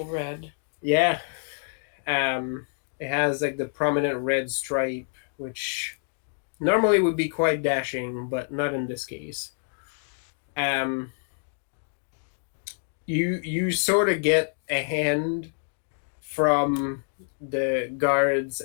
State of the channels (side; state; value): right; silent; digital silence